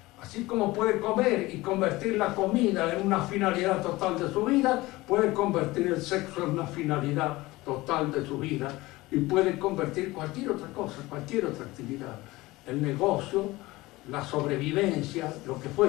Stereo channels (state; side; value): quieter; right; 19.8 dB